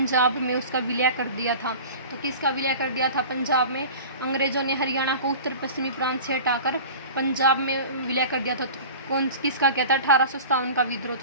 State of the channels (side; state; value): both; inverted; correlation -0.37